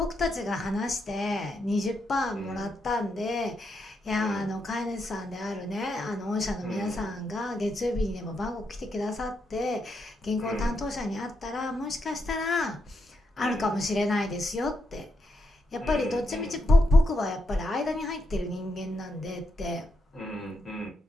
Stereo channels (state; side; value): normal; both; correlation 0.82